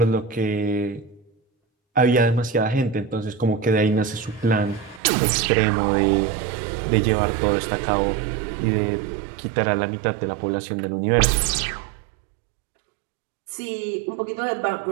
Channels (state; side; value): drops out; left; at 5.0 s